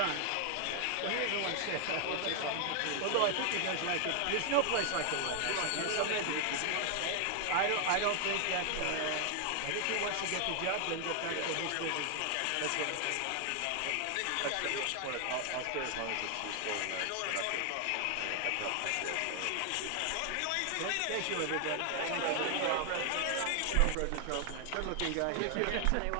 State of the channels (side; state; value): both; different; correlation 0.00